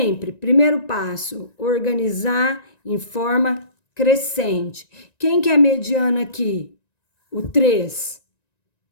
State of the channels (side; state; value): right; late; 1.9 ms